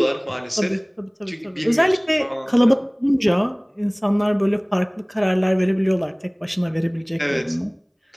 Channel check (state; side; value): identical; both; correlation 1.00